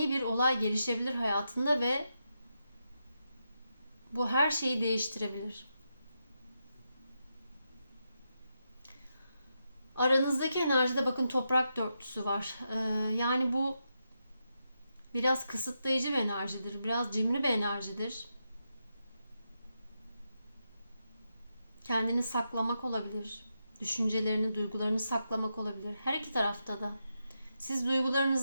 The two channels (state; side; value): inverted; both; correlation -0.85